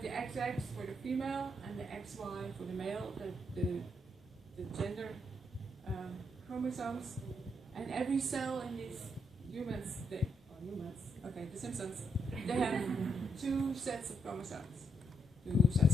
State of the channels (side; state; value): both; normal; correlation 0.78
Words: the XX for the female and the XY for the male, the gender chromosomes. And every cell in these humans, the Simpsons, they have 2 sets of chromosomes. 2